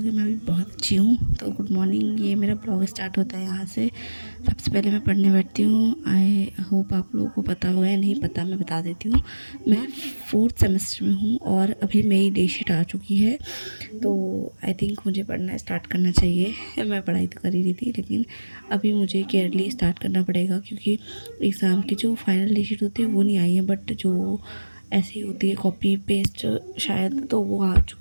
मैं भी बहुत अच्छी हूँ। तो गुड मॉर्निंग। ये मेरा ब्लॉग स्टार्ट होता है यहाँ से। सबसे पहले मैं पढ़ने बैठती हूँ। आई होप आप लोगों को पता होगा या नहीं पता, मैं बता देती हूँ। मैं 4th सेमेस्टर में हूँ और अभी मेरी डे शीट आ चुकी है। तो आई थिंक मुझे पढ़ना स्टार्ट करना चाहिए। मैं पढ़ाई तो कर ही रही थी, लेकिन अभी मुझे केयरली स्टार्ट करना पड़ेगा, क्योंकि एग्ज़ाम की जो फाइनल डे शीट होती है वो नहीं आई है, बट जो ऐसी होती है कॉपी पेस्ट शायद, तो वो आ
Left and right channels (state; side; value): inverted; both; correlation -1.00